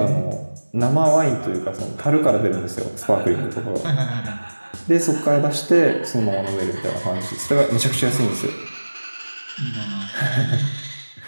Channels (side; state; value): both; inverted; correlation -1.00